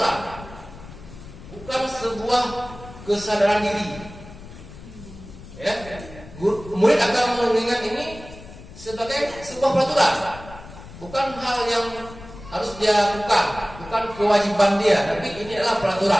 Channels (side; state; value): left; noise; rumble, 16 dB below the sound